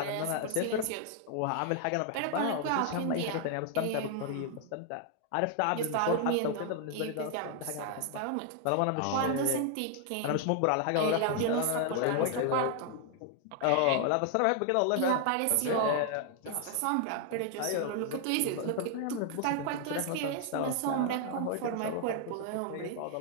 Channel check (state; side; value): different; both; correlation 0.00